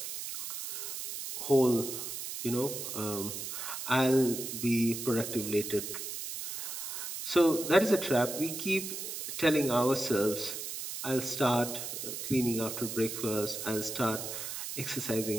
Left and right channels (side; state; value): right; noise; hiss, 6 dB below the sound